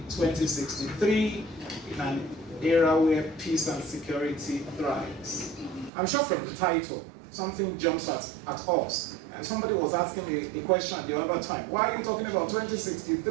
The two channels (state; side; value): drops out; left; at 5.9 s